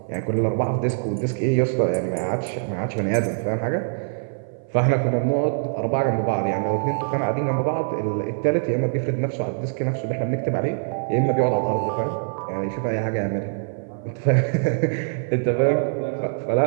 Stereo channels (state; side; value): silent; left; 58 dB below the other